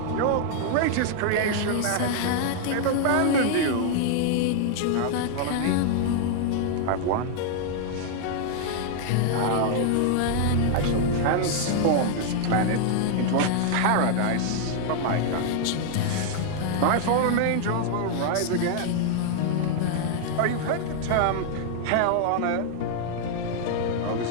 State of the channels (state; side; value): different; both; correlation 0.00